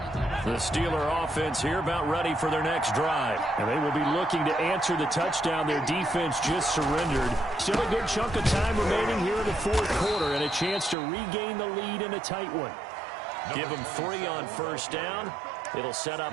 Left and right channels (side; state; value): left; drops out; at 11.0 s